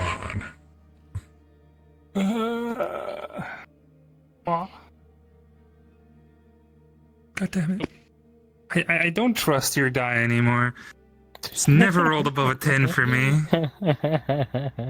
on. God damn it. I don't trust your die anymore. It's never rolled above a 10 for me.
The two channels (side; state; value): both; identical; correlation 1.00